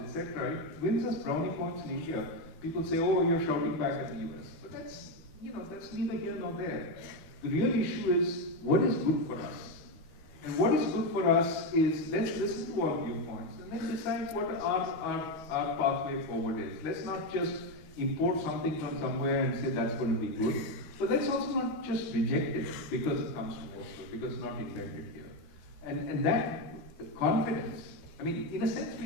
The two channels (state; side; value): late; right; 13 ms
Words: it wins us brownie points in India. People say, oh, you're shouting back at the US. But that's neither here nor there. The real issue is what is good for us. And what is good for us is let's listen to all viewpoints and then decide what our pathway forward is. Let's not just import something from somewhere and say that's going to be good. But let's also not just reject it because it comes from elsewhere, because it's not invented here. And that confidence, I mean, in a sense,